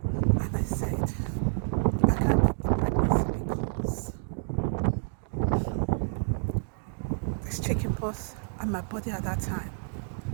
And I said, I can't keep the pregnancy because there's chicken pox and my body at that time.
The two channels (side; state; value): left; silent; digital silence